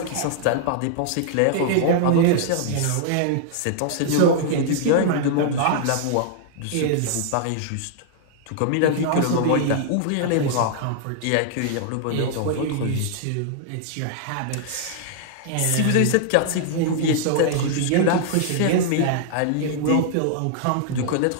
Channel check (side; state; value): both; different; correlation -0.01